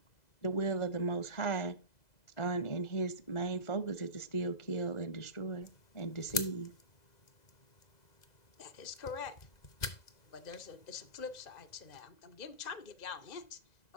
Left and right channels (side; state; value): right; late; 2.0 ms